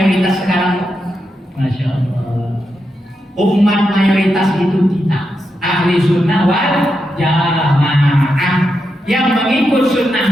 sekarang? Masya Allah. Umat mayoritas itu kita, ahli sunnah wal jamaah, yang mengikut sunnah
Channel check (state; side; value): normal; both; correlation 0.86